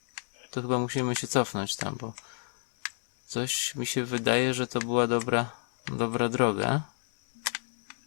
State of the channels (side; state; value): right; silent; 57 dB below the other